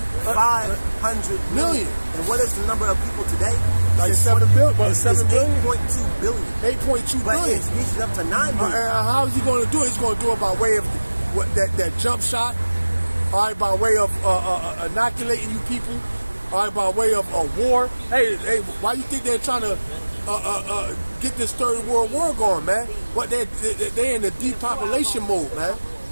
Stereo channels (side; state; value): both; inverted; correlation -1.00